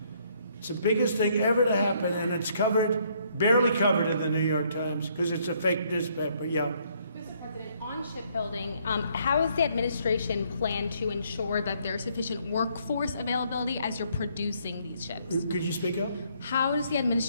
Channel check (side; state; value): both; inverted; correlation -0.68